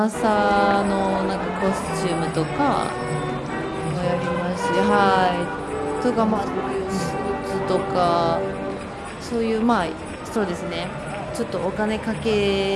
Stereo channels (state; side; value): identical; both; correlation 1.00